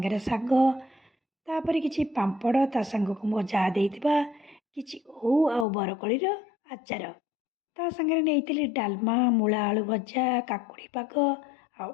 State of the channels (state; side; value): drops out; right; at 5.7 s